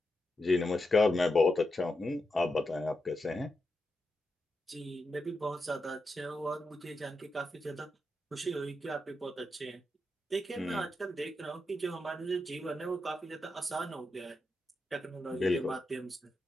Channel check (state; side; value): normal; both; correlation 0.87